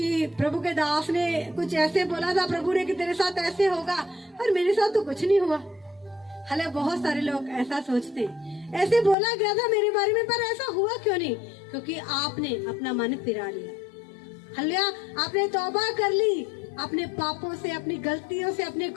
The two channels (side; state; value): right; drops out; at 9.2 s